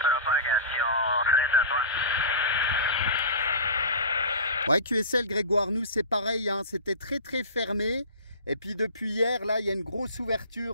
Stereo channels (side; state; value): both; inverted; correlation -0.32